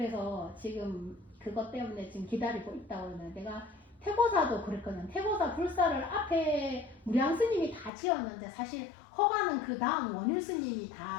지금 그것 때문에 지금 기다리고 있다고 그러는데 내가 태고사도 그랬거든. 태고사 불사를 앞에 무량 스님이 다 지었는데 사실 허가는 그 다음 원일 스님이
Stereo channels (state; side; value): drops out; right; at 7.9 s